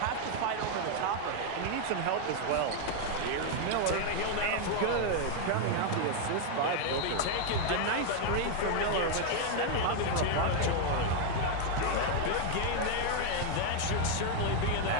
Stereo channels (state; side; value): different; both; correlation 0.01